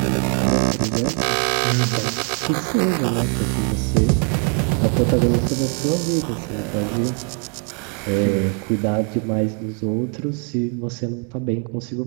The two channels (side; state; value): left; quieter; 39.0 dB